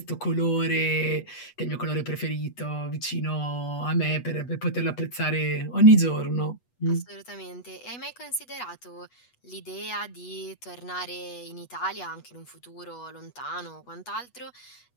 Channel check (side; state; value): right; late; 8.2 ms